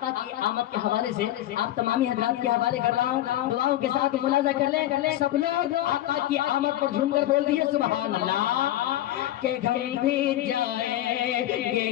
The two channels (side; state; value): right; quieter; 13.9 dB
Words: کی آمد کے حوالے سے آپ تمامی حضرات کے حوالے کر رہا ہوں، دعاؤں کے ساتھ ملاحظہ کر لیں۔ سب لوگ آقا کی آمد پر جھوم کر بول دیئے سبحان اللہ۔ کہ ہم بھی جائیں